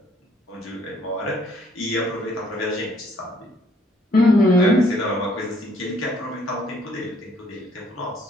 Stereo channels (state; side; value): normal; both; correlation 0.64